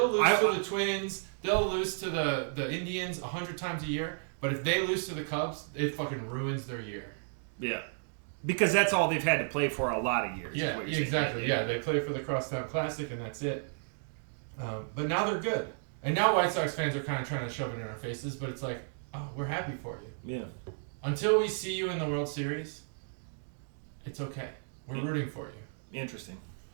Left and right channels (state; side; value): silent; left; digital silence